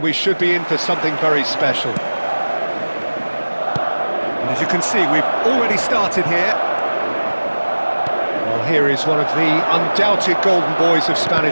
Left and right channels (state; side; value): inverted; both; correlation -1.00